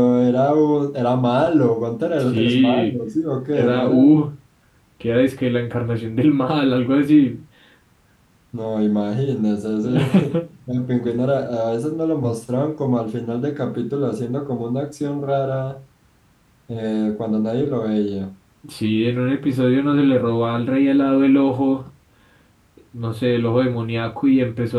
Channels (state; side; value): identical; both; correlation 1.00